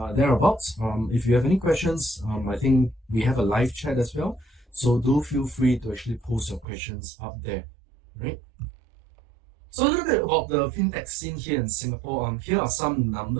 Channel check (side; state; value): left; drops out; at 6.7 s